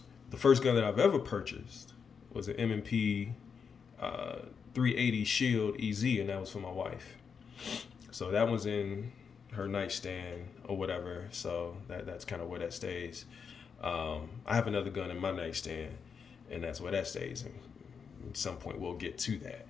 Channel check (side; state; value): right; quieter; 6.2 dB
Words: The first gun that I've ever purchased was an M&P 380 Shield EZ, and that was for my wife. So that was in her nightstand or whatever. So that's kind of where that stays. I have another gun in my nightstand, and that's where that stays. And at some point we'll get to that.